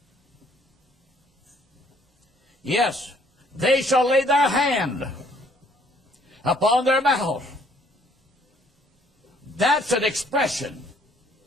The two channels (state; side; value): normal; both; correlation 0.62